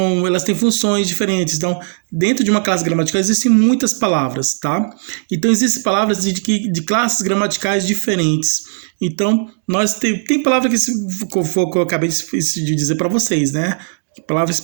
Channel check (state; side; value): silent; left; digital silence